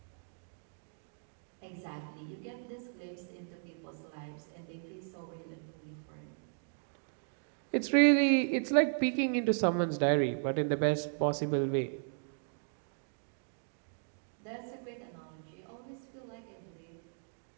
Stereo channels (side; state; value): left; silent; digital silence